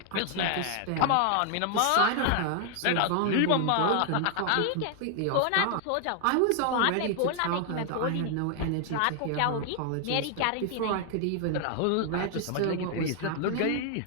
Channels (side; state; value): both; different; correlation 0.00